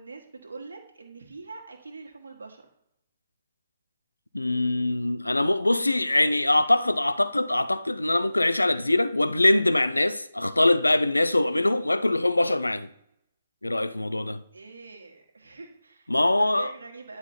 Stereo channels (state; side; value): inverted; both; correlation -0.98